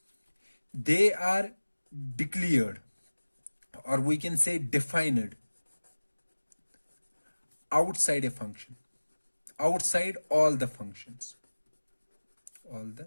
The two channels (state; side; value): inverted; both; correlation -1.00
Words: They are declared, or we can say defined, outside a function, outside all the functions.